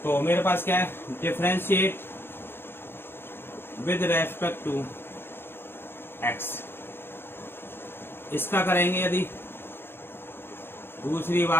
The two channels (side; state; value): right; late; 0.11 ms